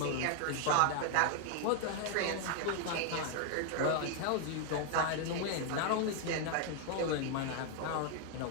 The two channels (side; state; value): both; different; correlation 0.00